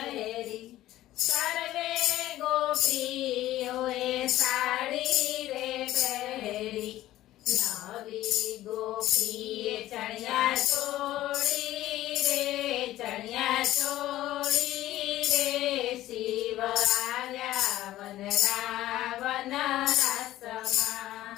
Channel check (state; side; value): quieter; right; 14.8 dB